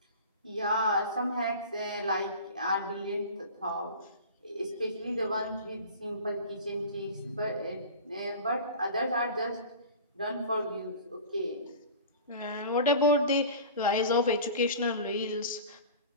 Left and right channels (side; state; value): both; inverted; correlation -0.37